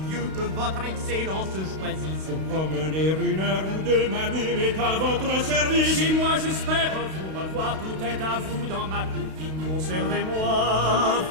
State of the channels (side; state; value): left; late; 32 ms